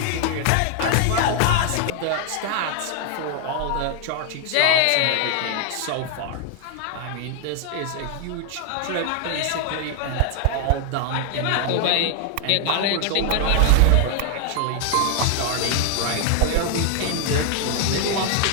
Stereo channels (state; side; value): different; both; correlation 0.00